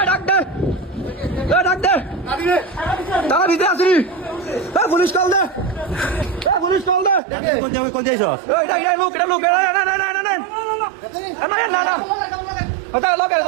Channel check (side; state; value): left; drops out; at 7.2 s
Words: পুলিশ কল দে, পুলিশ কল দে। কোন যাইছ?